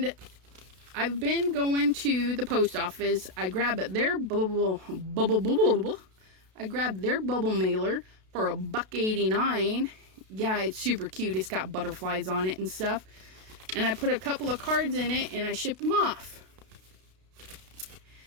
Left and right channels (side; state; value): left; late; 32 ms